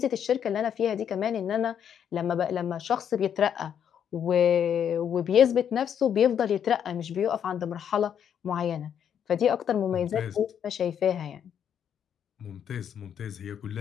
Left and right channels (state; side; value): quieter; right; 8.7 dB